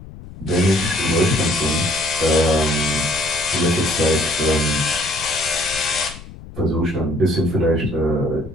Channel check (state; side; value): noise; left; rumble, 16 dB below the sound